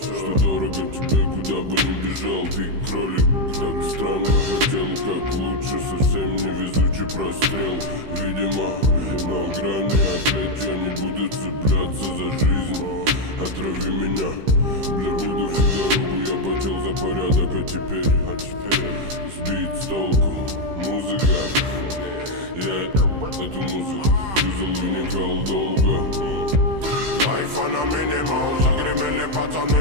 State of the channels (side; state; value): left; late; 15 ms